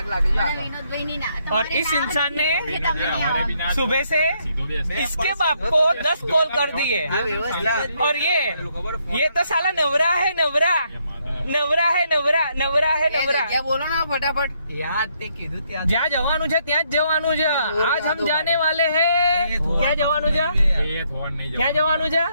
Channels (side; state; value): both; inverted; correlation -0.73